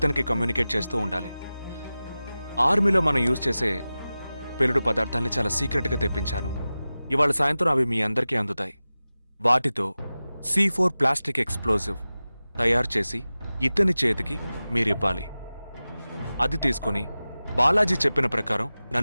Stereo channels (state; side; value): inverted; both; correlation -0.96